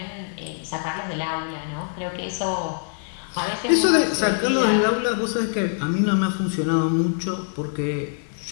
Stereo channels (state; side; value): silent; right; 55 dB below the other